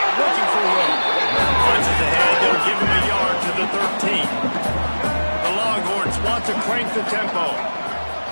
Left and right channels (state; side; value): inverted; both; correlation -1.00